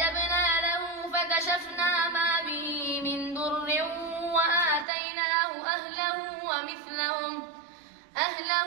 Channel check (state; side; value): drops out; left; at 4.9 s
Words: له فكشفنا ما به من ضر وآتيناه أهله